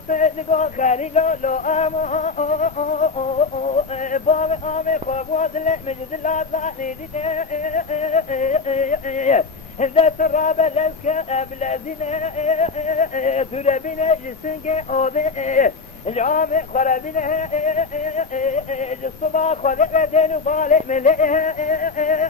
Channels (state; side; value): quieter; right; 4.4 dB